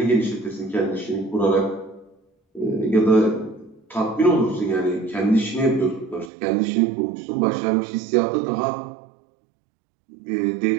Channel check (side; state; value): left; drops out; at 6.3 s